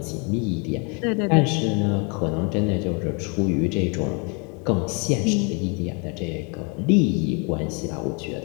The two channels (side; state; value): right; quieter; 34.1 dB